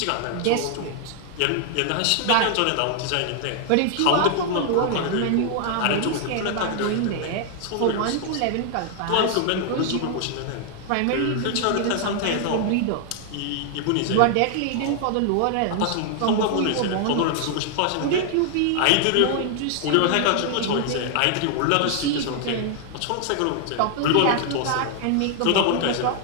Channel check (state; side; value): different; both; correlation 0.00